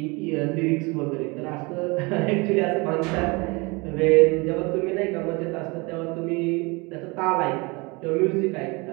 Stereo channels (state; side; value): quieter; left; 26.9 dB